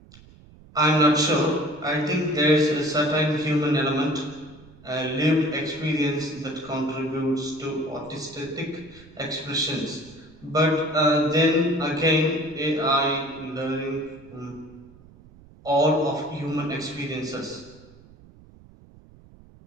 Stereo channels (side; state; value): right; noise; rumble, 24 dB below the sound